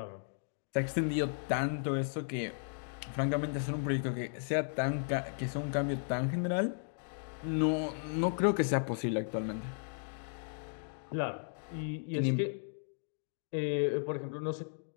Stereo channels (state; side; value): silent; right; digital silence